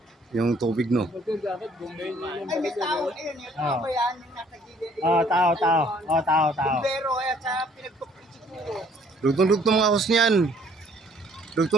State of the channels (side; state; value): both; normal; correlation 0.61